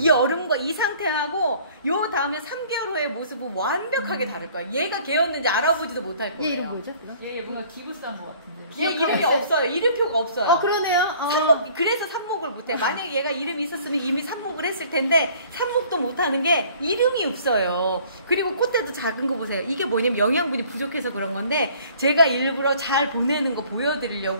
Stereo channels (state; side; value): inverted; both; correlation -0.54